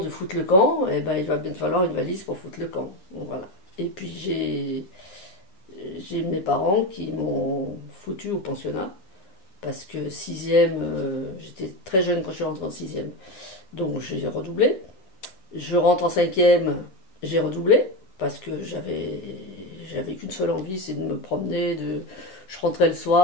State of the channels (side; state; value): right; late; 9.8 ms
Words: foutre le camp, eh ben, il va bien te falloir une valise pour foutre le camp. Donc, voilà. Et puis j'ai mes parents qui m'ont foutu au pensionnat. Parce que sixième, j'étais très jeune quand je suis rentrée en sixième. Donc j'ai redoublé. Je rentre en cinquième, j'ai redoublé. Parce que j'avais qu'une seule envie, c'est de me promener. Je rentrais le